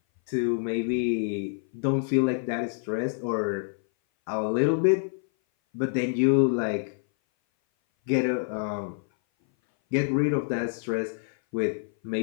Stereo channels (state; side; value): silent; right; 58 dB below the other